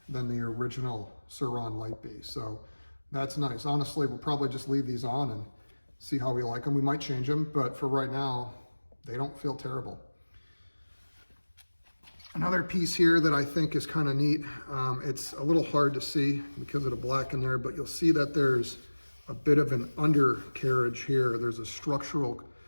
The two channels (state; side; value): inverted; both; correlation -1.00